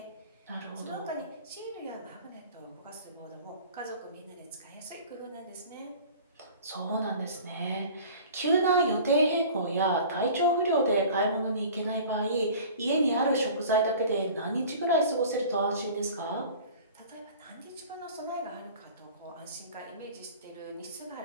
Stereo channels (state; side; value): inverted; both; correlation -0.43